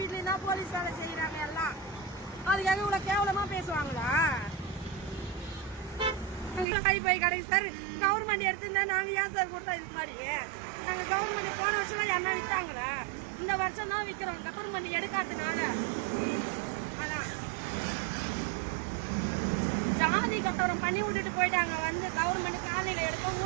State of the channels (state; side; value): drops out; left; at 6.7 s